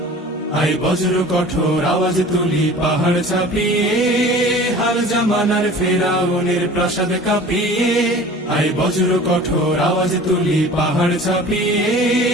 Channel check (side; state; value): both; normal; correlation 0.42